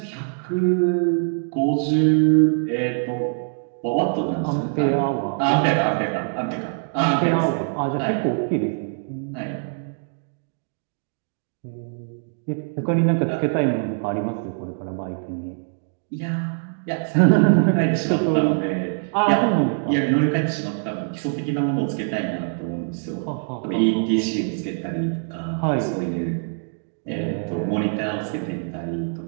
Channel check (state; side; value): silent; left; 63 dB below the other